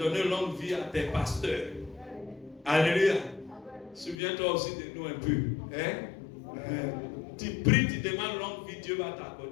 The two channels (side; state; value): right; drops out; at 4.2 s